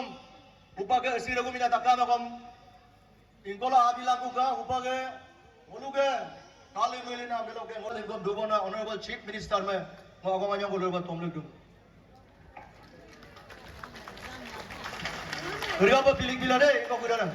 upage asira ko minatakam akom inkola adila ko ga upage oluge kali melina beloge ngole gom dubona honorable chief minister me mo agomanya bolor ba tomlek dum Riya ba pilik bila de ko gudana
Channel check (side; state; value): both; identical; correlation 1.00